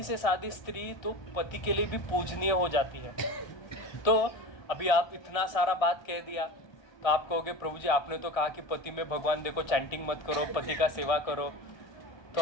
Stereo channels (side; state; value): right; late; 1.6 ms